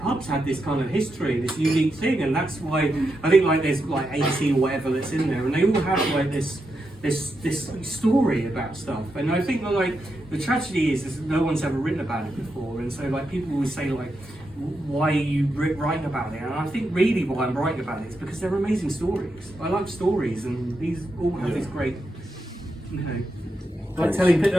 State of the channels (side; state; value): both; normal; correlation 0.85